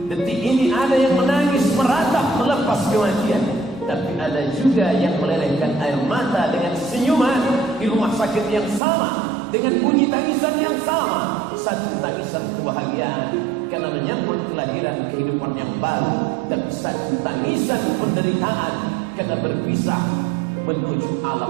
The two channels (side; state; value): left; drops out; at 8.8 s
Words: Detik ini ada yang menangis, meratap, melepas kematian. Tapi ada juga yang melelehkan air mata dengan senyuman di rumah sakit yang sama, dengan bunyi tangisan yang sama. Satu tangisan kebahagiaan karena menyambut kelahiran kehidupan yang baru, tapi satu tangisan penderitaan karena berpisah menuju